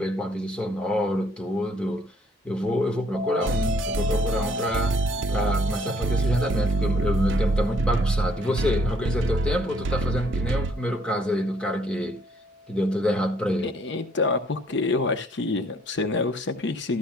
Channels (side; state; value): both; normal; correlation 0.64